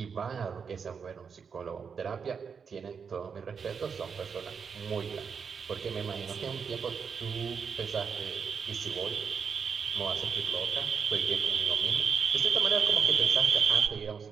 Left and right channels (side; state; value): left; quieter; 6.2 dB